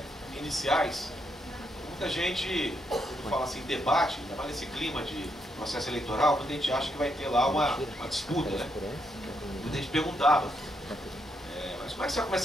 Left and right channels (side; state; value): both; normal; correlation 0.78